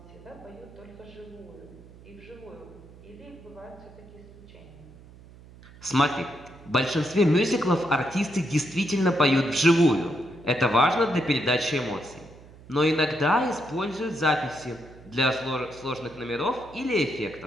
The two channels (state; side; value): noise; right; hum, 21 dB below the sound